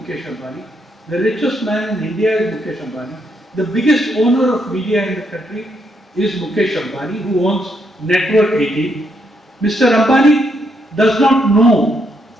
Ambani. The richest man in India is Mukesh Ambani. The biggest owner of media in the country is Mukesh Ambani, who owns Network 18. Mr. Ambani does not know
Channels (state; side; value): normal; both; correlation 0.76